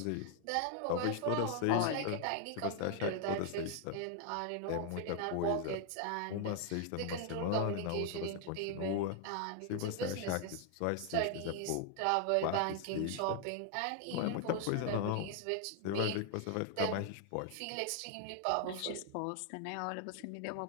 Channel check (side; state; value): both; different; correlation 0.00